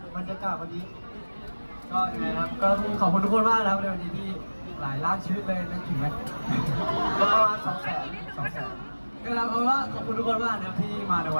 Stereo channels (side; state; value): both; inverted; correlation -1.00